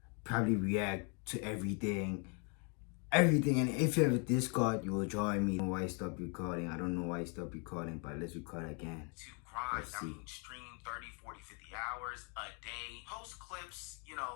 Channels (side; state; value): right; quieter; 36.2 dB